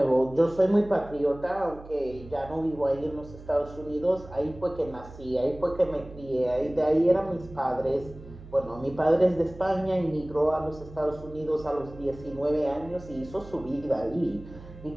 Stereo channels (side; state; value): right; noise; hum, 17 dB below the sound